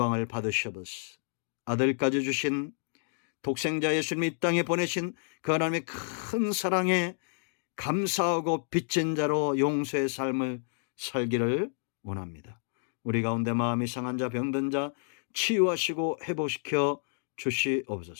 받으셔버스 아들까지 주신 독생자 예수님이 이 땅에 보내신 그 하나님의 큰 사랑에 감사하고 빚진 자로 용서의 삶을 살기를 원합니다. 우리 가운데 마음이 상한 자, 병든 자 치유하시고 회복시켜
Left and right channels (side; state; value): right; silent; digital silence